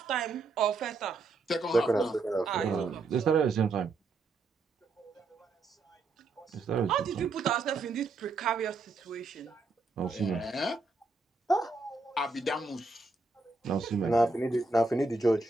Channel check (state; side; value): quieter; left; 3.6 dB